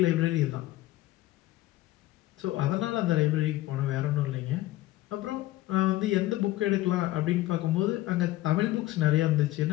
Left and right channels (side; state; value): right; quieter; 16.5 dB